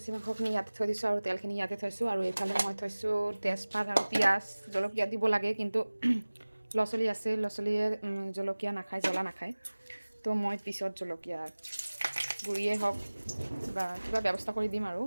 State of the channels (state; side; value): inverted; both; correlation -1.00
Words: মাংসখিনি ইয়াতে থৈ দিছোঁ আৰু তেলখিনি ইয়াতে থৈছোঁ, আৰু এইফালে মই থৈছোঁ তেজপাত আৰু পিঁয়াজ। জলকীয়া দিব লাগে, কিন্তু ল'ৰা ছোৱালী আছে, ল'ৰা ছোৱালীয়ে জলকীয়া নাখায়, জ্বলা নাখায়। তো মই পিছত জলকীয়া গুড়িয়ে হওক বা কিবা ব্যৱস্থা কৰি দিম আৰু